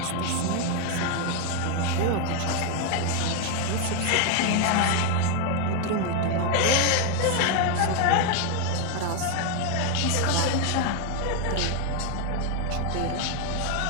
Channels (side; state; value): both; different; correlation 0.01